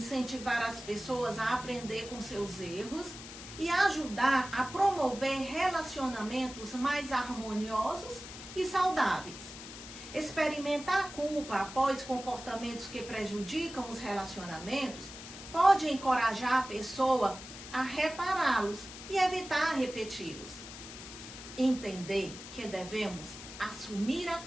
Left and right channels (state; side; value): noise; left; hiss, 13 dB below the sound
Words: as pessoas a aprender com seus erros e ajudar a promover relacionamentos mais harmoniosos e saudáveis. Experimentar a culpa após comportamentos que prejudicam os relacionamentos pode encorajar a pessoa a repará-los e evitar repeti-los. Entender que devemos assumir a